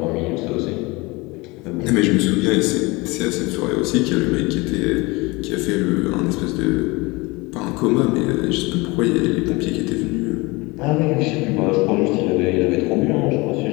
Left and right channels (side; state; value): right; quieter; 24.2 dB